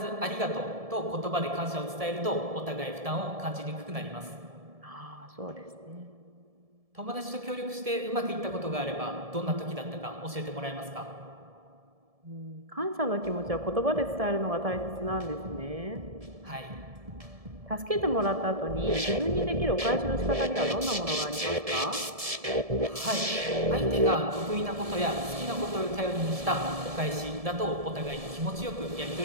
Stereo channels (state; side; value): late; left; 1.7 ms